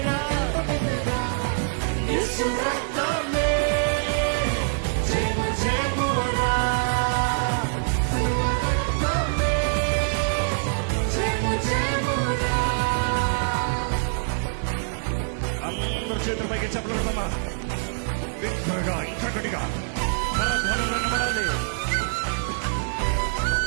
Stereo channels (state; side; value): silent; left; 62 dB below the other